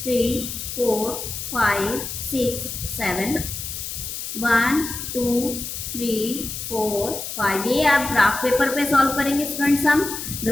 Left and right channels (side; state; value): left; noise; hiss, 7 dB below the sound